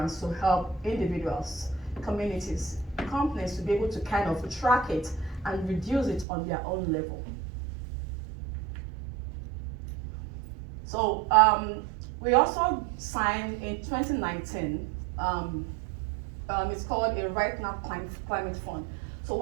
to help individuals, communities, companies to be able to kind of track it and reduce it on their own level. So we also signed in 2019, it's called a Right Now Climate Fund. So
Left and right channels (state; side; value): drops out; left; at 6.2 s